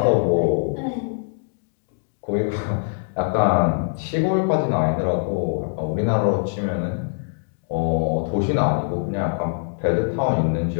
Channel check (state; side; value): silent; right; digital silence